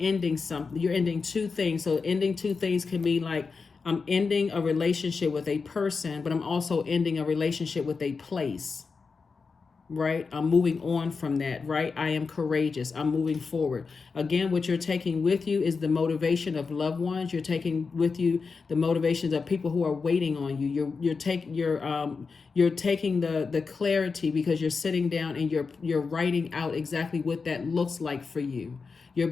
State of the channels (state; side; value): quieter; right; 4.8 dB